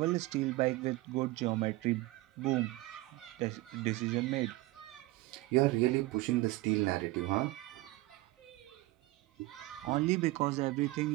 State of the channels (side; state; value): left; quieter; 19.7 dB